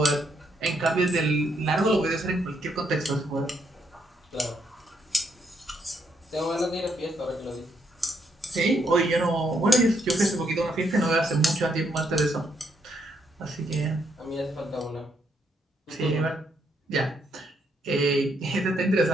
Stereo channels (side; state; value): both; normal; correlation 0.75